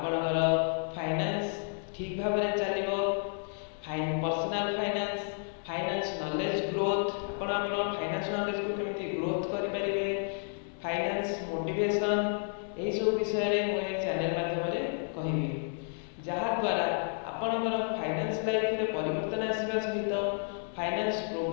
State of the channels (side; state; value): right; silent; 57 dB below the other